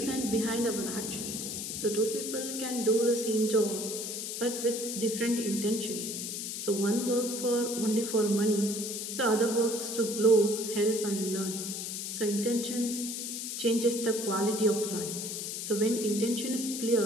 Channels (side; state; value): left; noise; hiss, 5 dB below the sound